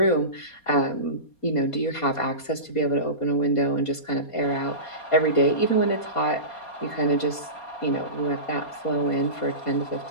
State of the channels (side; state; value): right; late; 4.2 ms